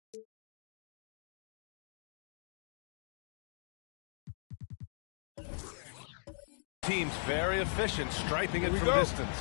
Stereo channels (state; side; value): silent; right; digital silence